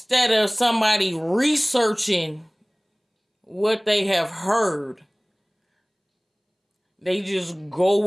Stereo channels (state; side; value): identical; both; correlation 1.00